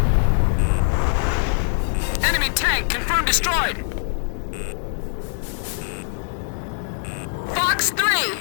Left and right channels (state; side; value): silent; right; digital silence